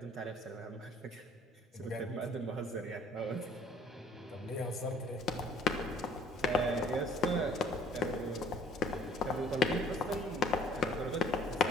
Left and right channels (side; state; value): both; normal; correlation 0.55